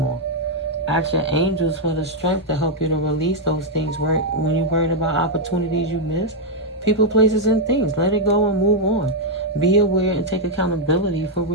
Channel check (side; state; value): both; normal; correlation -0.02